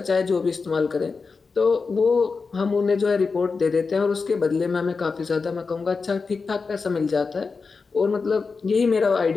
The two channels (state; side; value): quieter; right; 4.6 dB